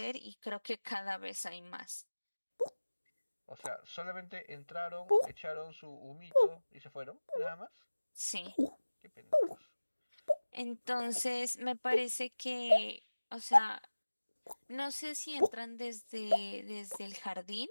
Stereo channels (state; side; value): inverted; both; correlation -1.00